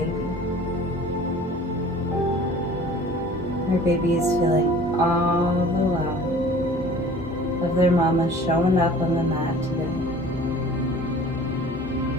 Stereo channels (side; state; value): both; normal; correlation 0.46